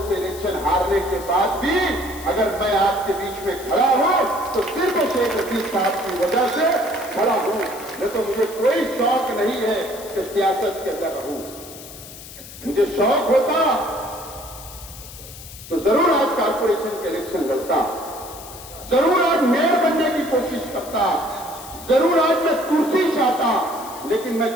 से इलेक्शन हारने के बाद भी अगर मैं आपके बीच में खड़ा हूं तो सिर्फ शेख रशीद साहब की वजह से खड़ा हूं, नहीं तो मुझे कोई शौक नहीं है कि सियासत के अंदर रहूं। मुझे शौक होता तो जरूर आज कारपोरेशन के इलेक्शन लड़ता, जरूर आज मेयर बनने की कोशिश करता, जरूर आज मैं कुर्सी चाहता, लेकिन मैं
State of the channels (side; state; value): left; noise; hiss, 15 dB below the sound